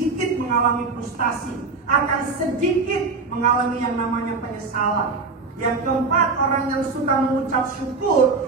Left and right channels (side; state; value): left; quieter; 4.2 dB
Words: mengalami frustasi, akan sedikit mengalami yang namanya penyesalan. Yang keempat, orang yang suka mengucap syukur